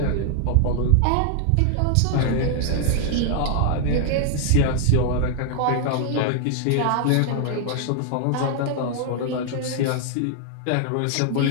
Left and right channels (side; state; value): both; different; correlation 0.00